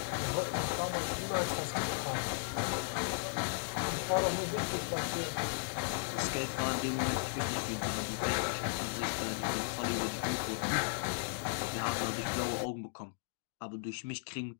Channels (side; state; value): right; silent; digital silence